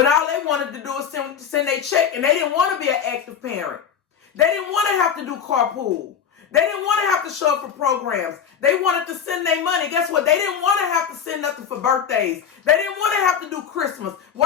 all they wanted to do is send their check and they didn't want to be an active parent. They didn't want to have to do carpool. They didn't want to have to show up for programs. They wanted to send their money. Guess what? They didn't want to have to send nothing for birthdays. They didn't want to have to do Christmas.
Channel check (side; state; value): right; quieter; 7.7 dB